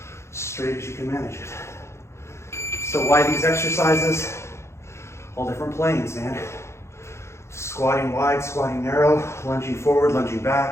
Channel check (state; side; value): late; right; 0.13 ms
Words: straight as you can manage it. So why these exercises? All different planes, man. Squatting wide, squatting narrow, lunging forward, lunging